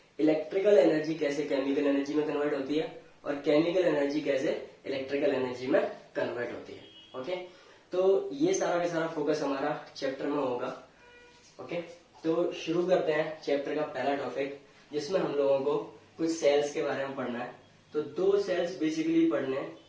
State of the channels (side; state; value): both; identical; correlation 1.00